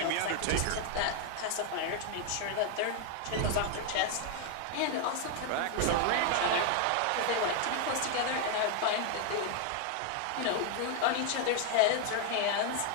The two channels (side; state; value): both; different; correlation 0.00